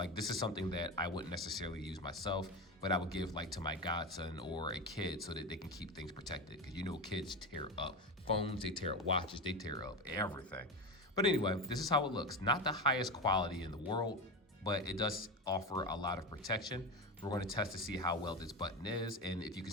this is something that I wouldn't necessarily use myself, but I would give like to my godson or a kid so that they can keep things protected. Because you know kids tear up phones, they tear up watches, they tear up everything. But anyway, this is how it looks. Not the highest quality in the world, but it does offer a lot of protection. We're going to test to see how well this button is and if you can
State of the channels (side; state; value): both; normal; correlation 0.20